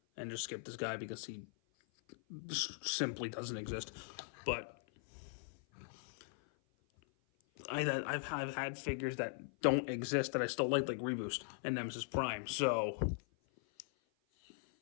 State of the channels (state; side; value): silent; right; 51 dB below the other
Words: and just skip this guy because he simply doesn't exist. But I've had figures that don't exist that I still like Reboost and Nemesis Prime. So